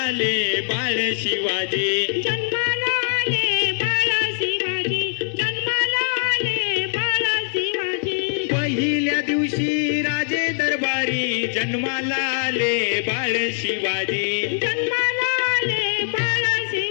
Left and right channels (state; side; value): silent; right; digital silence